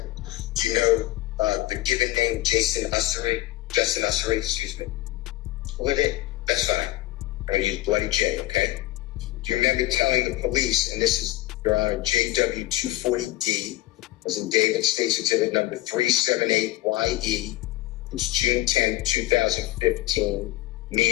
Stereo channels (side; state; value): right; quieter; 16.8 dB